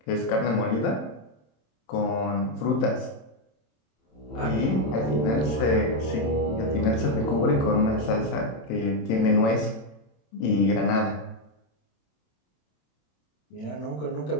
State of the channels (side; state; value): right; late; 27 ms